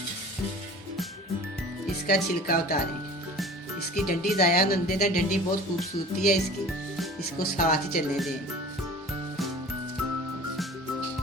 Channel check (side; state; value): both; normal; correlation 0.42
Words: इसका छिलका उतारें। इसकी डंडी ज़ाया न देना, डंडी बहुत खूबसूरती है इसकी, इसको साथ ही चलने दें।